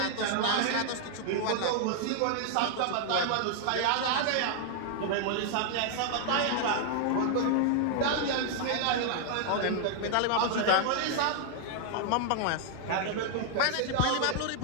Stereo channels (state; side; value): different; both; correlation 0.00